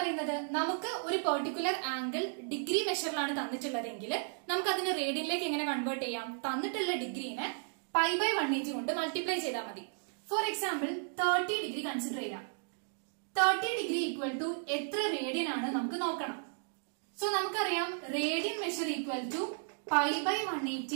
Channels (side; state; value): left; silent; 55 dB below the other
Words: നമുക്ക് ഒരു പെർട്ടിക്കുലർ ആംഗിൾ ഡിഗ്രി മെഷറിലാണ് തന്നിട്ടുള്ളതെങ്കിൽ നമുക്ക് അതിനെ റേഡിയനിലേക്ക് എങ്ങനെ കൺവേർട്ട് ചെയ്യാം? തന്നിട്ടുള്ള ഡിഗ്രീനെ π/180 കൊണ്ട് മൾട്ടിപ്ലൈ ചെയ്താൽ മതി. ഫോർ എക്സാമ്പിൾ 30 ഡിഗ്രി കൺസിഡർ ചെയ്യാം. 30 ഡിഗ്രി ഈക്വൽ ടു എത്ര റേഡിയൻ ആണ് നമുക്ക് നോക്കണം. സോ നമുക്കറിയാം radian measure equal to